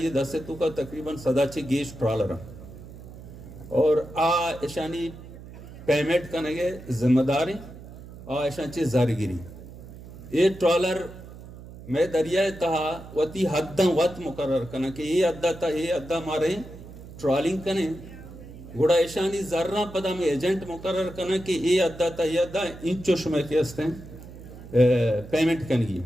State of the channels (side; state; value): right; noise; hum, 15 dB below the sound